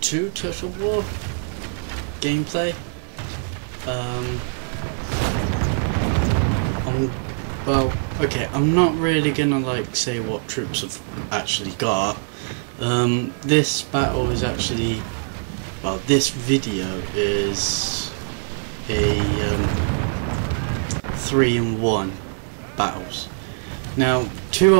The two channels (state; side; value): silent; left; digital silence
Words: 2 Total War gameplay. I'm not really gonna say what troops I've actually got. This battle is actually, this video is a 3-in-1 battles. Now, 2